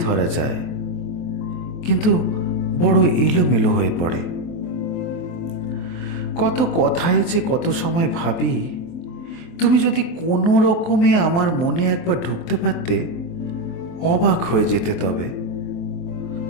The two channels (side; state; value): right; late; 23 ms